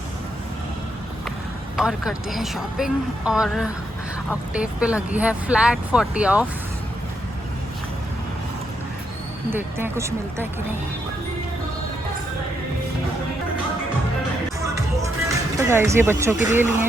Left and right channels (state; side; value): normal; both; correlation 0.79